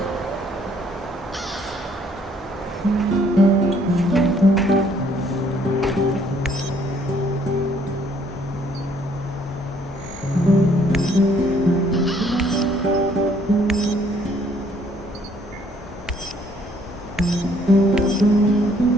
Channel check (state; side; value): normal; both; correlation 0.64